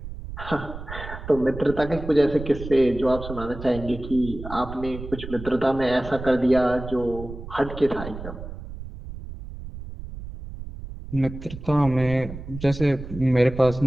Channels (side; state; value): right; noise; rumble, 11 dB below the sound